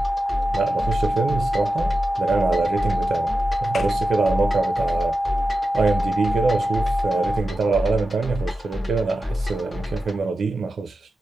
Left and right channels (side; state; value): both; normal; correlation 0.91